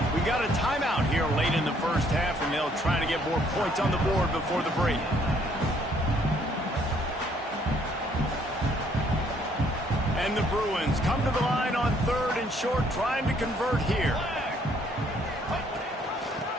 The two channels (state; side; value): normal; both; correlation 0.65